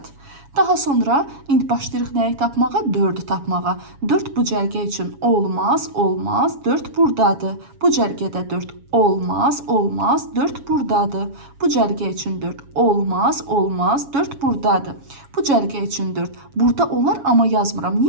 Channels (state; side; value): late; left; 7.2 ms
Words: Daha sonra indi başlayırıq nəyi tapmağa? 4-ü tapmağa. 4 bu cərgə üçün olmaz, olmaz. 4 buradadır. Bu cərgədə 4 olmaz, olmaz. 4 buradadır. Bu cərgə üçün 4 olmaz, olmaz. 4 buradadır. Bu cərgə üçün 4 burada olar, amma yazmıram.